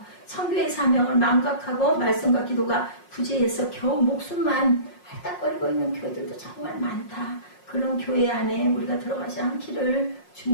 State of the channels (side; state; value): right; late; 5.5 ms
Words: 선교의 사명을 망각하고 말씀과 기도가 부재해서 겨우 목숨만 할딱거리고 있는 교회들도 정말 많다. 그런 교회 안에 우리가 들어가지 않기를